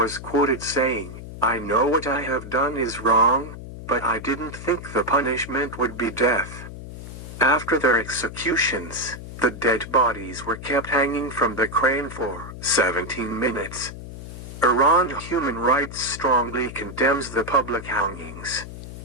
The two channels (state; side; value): noise; left; hum, 12 dB below the sound